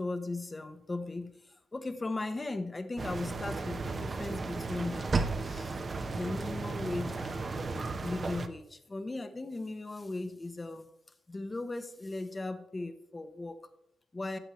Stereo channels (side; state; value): both; normal; correlation 0.89